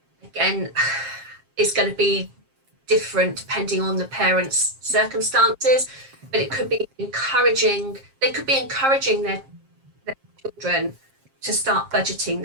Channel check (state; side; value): late; left; 7.5 ms